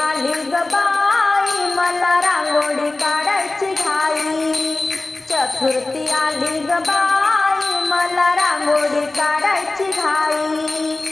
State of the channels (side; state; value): right; quieter; 3.1 dB